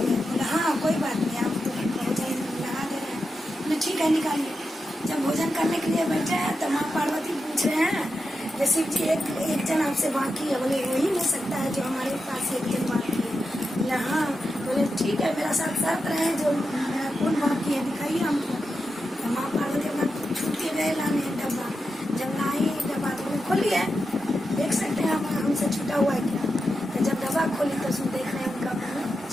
बोला हाँ कोई बात नहीं आप तो भोजन लगा दे रहे हैं। बोले ठीक है निकालिए। जब भोजन करने के लिए बैठे हैं तो माँ पार्वती पूछ रहे हैं जैसे जी एक जन आपसे बाकी है। बोले वही हो सकता है जो हमारे पास एक जन बाकी है। बोला हाँ। बोले ठीक है मेरा साथ साथ रहे जो मेरा कौन बाकी है दिखाइए हमको। तो माँ पार्वती अपना छूट के गए लाने डब्बा। जब लाई डब्बा तो खोलिए देख सकते हैं आप हमसे छूटा हुआ है क्या। तो जब डब्बा खोली तो उसमें देख रहे हैं उनका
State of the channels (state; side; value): normal; both; correlation 0.89